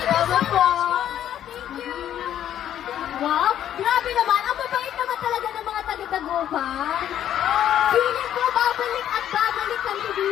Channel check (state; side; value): quieter; right; 10.8 dB